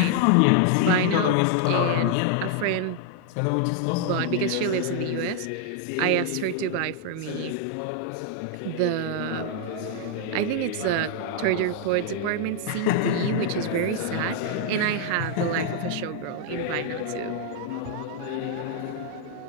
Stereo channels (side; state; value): both; different; correlation 0.00